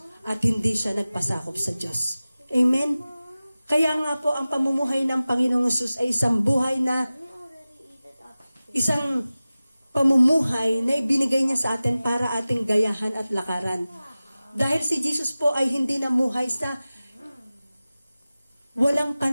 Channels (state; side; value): inverted; both; correlation -0.97